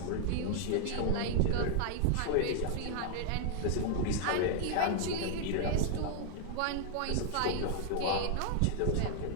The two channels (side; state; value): both; different; correlation 0.00